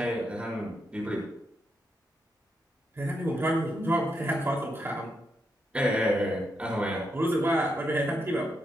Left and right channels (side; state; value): both; normal; correlation 0.82